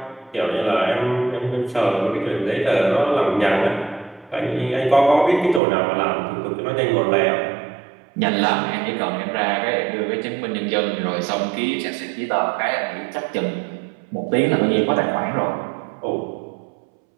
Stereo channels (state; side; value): drops out; left; at 5.6 s